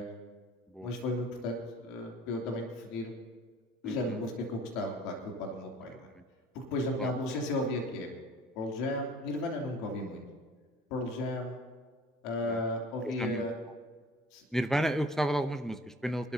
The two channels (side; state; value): both; normal; correlation 0.49